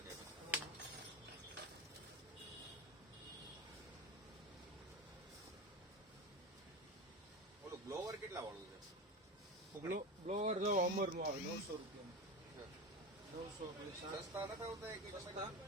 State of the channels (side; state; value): both; normal; correlation 0.24